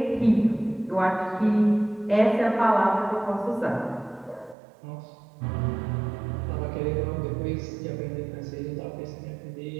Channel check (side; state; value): left; drops out; at 4.5 s